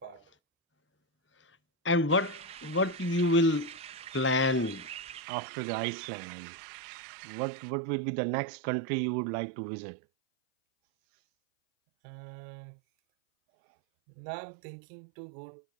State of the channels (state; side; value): drops out; left; at 5.2 s